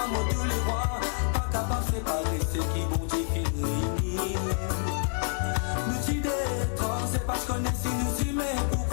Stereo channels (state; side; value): silent; right; 58 dB below the other